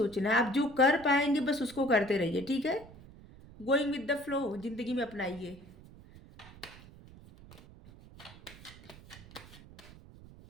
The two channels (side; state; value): right; noise; rumble, 20 dB below the sound